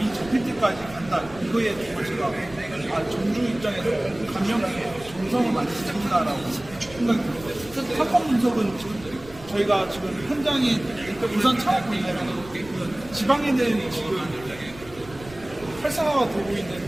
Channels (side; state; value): right; noise; rumble, 19 dB below the sound